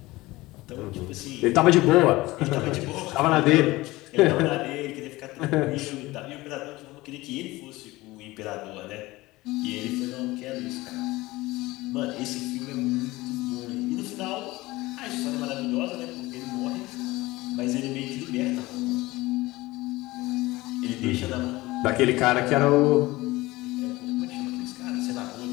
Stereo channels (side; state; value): right; quieter; 19.7 dB